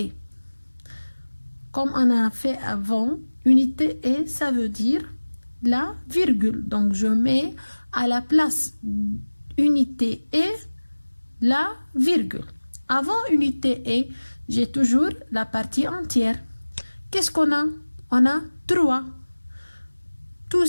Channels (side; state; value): both; inverted; correlation -1.00